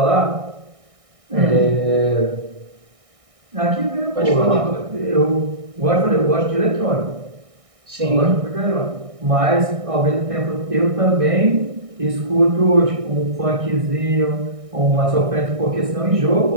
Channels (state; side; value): late; left; 1.6 ms